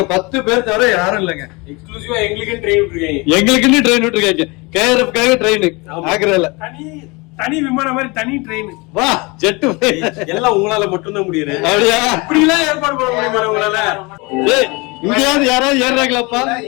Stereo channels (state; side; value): quieter; right; 26.5 dB